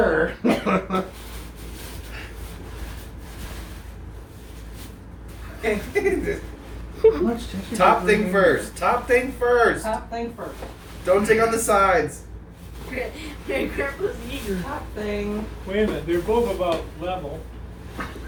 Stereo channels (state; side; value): identical; both; correlation 1.00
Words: Top thing first. Top thing first. Top thing first. Don't take on the sides. Grandpa's eager. Top thing. Wait a minute, they're both about level.